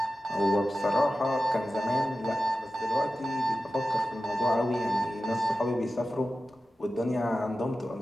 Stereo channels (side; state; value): both; normal; correlation 0.94